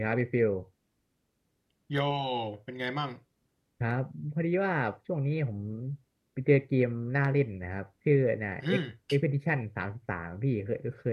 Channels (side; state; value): both; identical; correlation 1.00